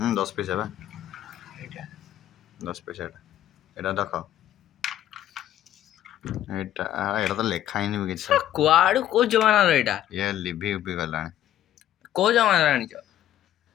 10 ପଇସା ବା এটা 10 ପଇସା ଏଇଟା ଦେଖ। ଏଇଟା ତ ଲେଖା ହେଇନି ବି କିଛି। କୁଆଡୁ କୋଉ ଜମାନାର ଏଇଟା? ଇଏ ଲିଭି ଗଲାଣି। କୋଉ ଜମାନାର ଆଣିଛ?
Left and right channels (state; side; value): quieter; right; 12.3 dB